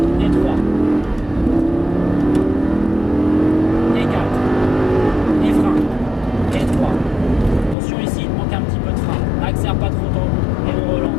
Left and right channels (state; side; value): drops out; right; at 7.8 s